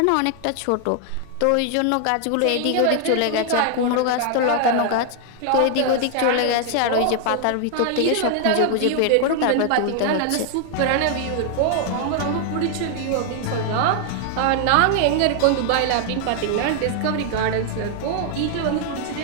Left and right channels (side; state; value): both; different; correlation 0.00